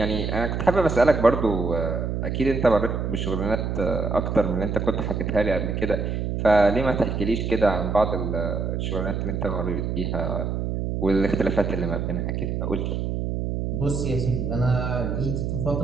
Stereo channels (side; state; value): right; noise; hum, 1 dB below the sound